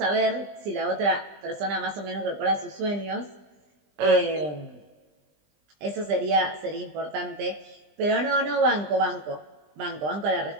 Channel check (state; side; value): late; left; 20 ms